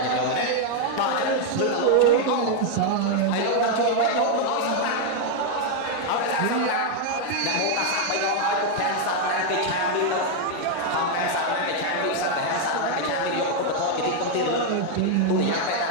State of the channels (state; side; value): different; both; correlation 0.00